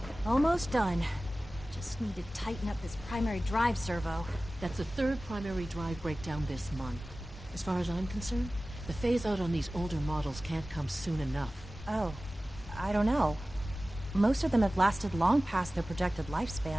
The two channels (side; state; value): both; normal; correlation 0.97